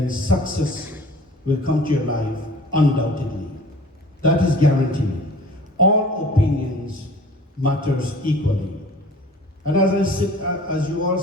success will come to your life undoubtedly. That is guaranteed. All opinions matters equally. And as you all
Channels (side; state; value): both; normal; correlation 0.46